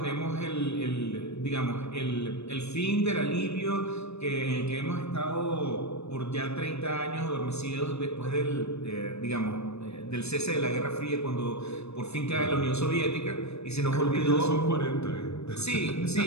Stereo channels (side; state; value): right; late; 0.80 ms